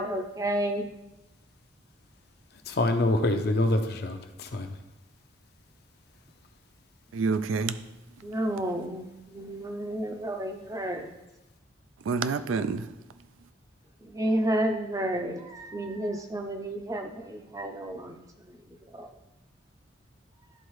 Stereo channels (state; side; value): normal; both; correlation 0.61